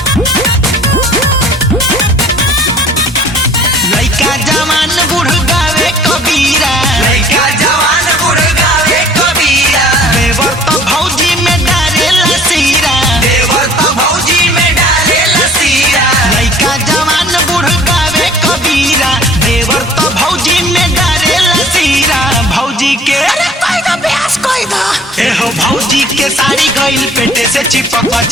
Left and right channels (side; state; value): both; normal; correlation 0.52